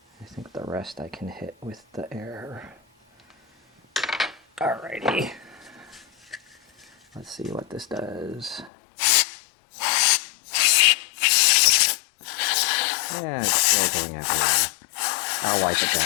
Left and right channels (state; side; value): drops out; right; at 8.7 s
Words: I think the rest I can hit with the air. Alrighty. Let's see what this does. Yeah, it's still going everywhere. I'll wipe it